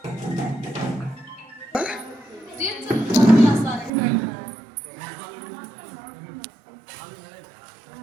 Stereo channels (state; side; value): drops out; left; at 3.9 s